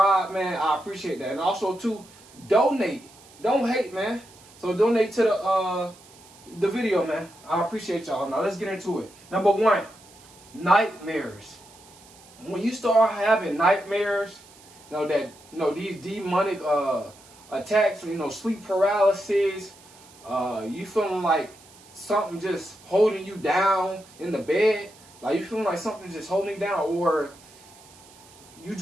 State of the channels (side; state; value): right; noise; hiss, 24 dB below the sound